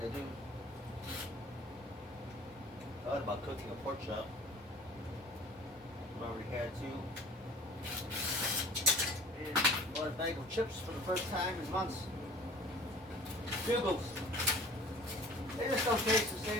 do. Thought about cooking a pork chop. I've already had two. And bought a bag of chips for the first time in months. Bugles. They just don't taste the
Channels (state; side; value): normal; both; correlation 0.46